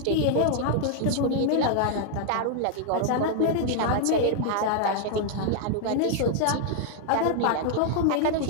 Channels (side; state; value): both; different; correlation 0.00